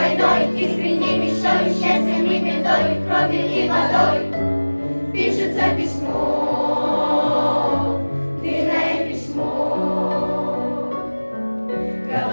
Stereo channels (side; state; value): both; inverted; correlation -1.00